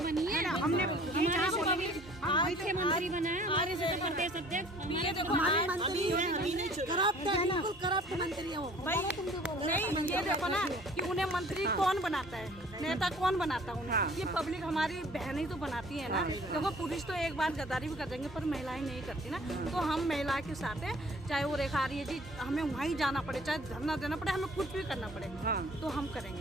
बनी है, हमने हमारे से तो अभी मुख्यमंत्री बना है, हमारे से तो प्रदेश अध्यक्ष, हमारे से तो हमारी मंत्री अभी नहीं चुना। करप्ट है, बिल्कुल करप्ट मंत्री है वो। नहीं, ये देखो ना कि उन्हें मंत्री कौन बनाता है, नेता कौन बनाता है उन्हें। ये पब्लिक हमारी बहनें तो बनाती है ना। देखो, पुरुष तो एक बार गद्दारी भी कर देंगे, पर महिलाएं नहीं करती ना। तो हम महिला के साथ हैं, चाहे वो रेखा रही है जी, हमें वहीं जाना पड़े, चाहे धरना देना पड़े, हमें कुछ भी करना पड़े, तो हम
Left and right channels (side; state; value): both; normal; correlation 0.52